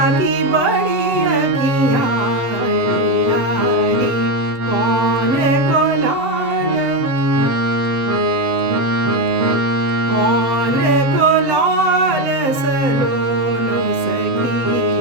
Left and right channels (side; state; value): left; late; 7.8 ms